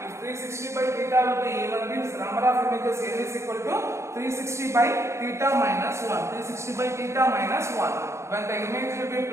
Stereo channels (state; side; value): late; left; 0.14 ms